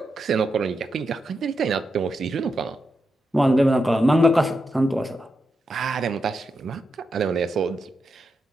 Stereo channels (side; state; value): both; normal; correlation 0.86